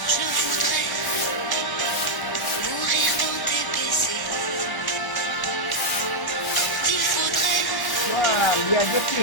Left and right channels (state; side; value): late; right; 1.3 ms